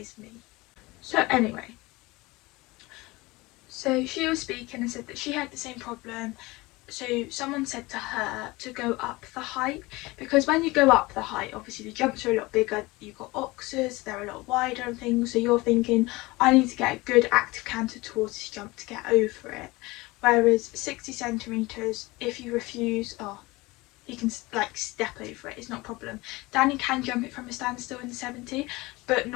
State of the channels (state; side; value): quieter; right; 22.0 dB